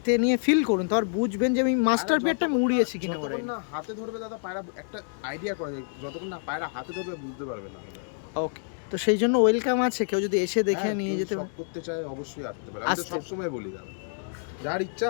নিয়ে ফিল করুন তার বুঝবেন যে আমি মাস্টার পেয়ারটা আমি উড়িয়েছি কিনা। যতক্ষণ না হাতে ধরবে দাদা পায়রা একটা আইডিয়া করা যায়, যতক্ষণ না পায়রা হাতে ধরবে বুঝতে পারবে না দাদা। ওকে, তো সেই জন্য ওয়েলকাম আছে, কেউ যদি এসে দেখে হ্যাঁ, নিয়ে কেউ যেতে শখ করতে চায় অবশ্যই আসতে পারে। আমি তো আসতে- সবসময় বলি দাদা, যার ইচ্ছা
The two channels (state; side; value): silent; right; digital silence